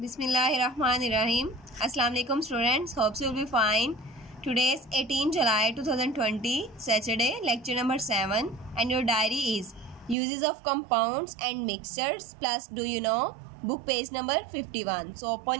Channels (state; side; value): drops out; left; at 10.2 s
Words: Assalamu alaikum students. Hope you will be fine. Today is 18 July 2020, Saturday, lecture number 7, and your diary is uses of compounds and mixtures plus do you know, book page number 51. So open